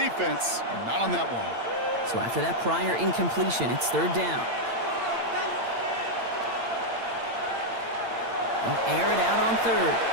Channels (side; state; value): left; late; 8.8 ms